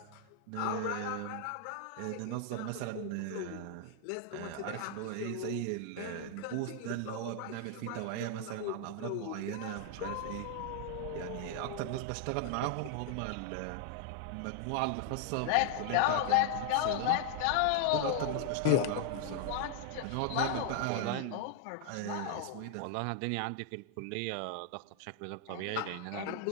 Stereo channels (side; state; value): both; different; correlation 0.00